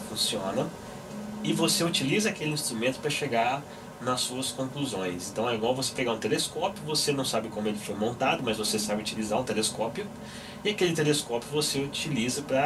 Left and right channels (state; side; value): identical; both; correlation 1.00